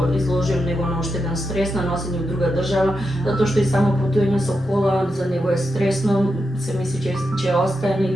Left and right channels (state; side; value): normal; both; correlation 0.87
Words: изложим него на уште еден стрес на носење во друга држава, затоа што и само патување со кола за него е стресно, се мисли че остане